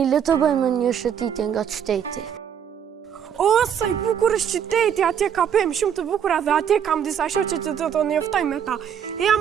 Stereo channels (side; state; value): left; quieter; 8.4 dB